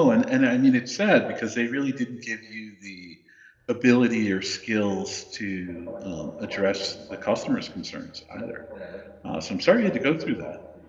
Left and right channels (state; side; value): identical; both; correlation 1.00